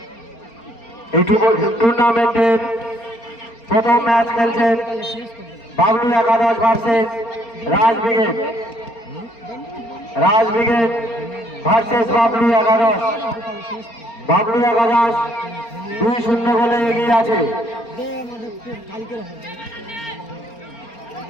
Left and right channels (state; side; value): late; right; 4.3 ms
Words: এই টুর্নামেন্টের প্রথম ম্যাচ খেলছেন বাবলু একাদশ ভার্সেস রাজ ব্রিগেড। রাজ ব্রিগেড ভার্সেস বাবলু একাদশ। বাবলু একাদশ 2-0 গোলে এগিয়ে আছে।